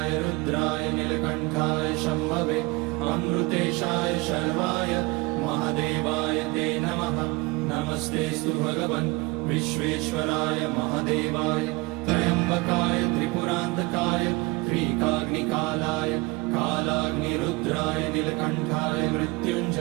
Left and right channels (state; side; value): quieter; left; 24.9 dB